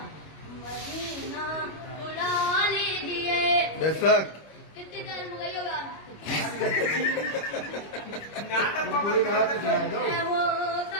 मदीना बुला लीजिए। बेशक कितनी देर में गई हो यार? पूरी कहा तो सुना दो। मैं वो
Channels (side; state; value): right; late; 25 ms